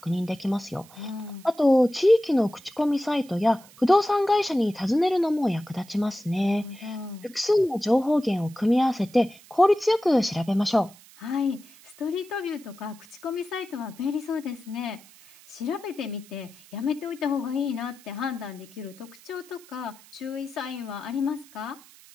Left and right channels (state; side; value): noise; right; hiss, 24 dB below the sound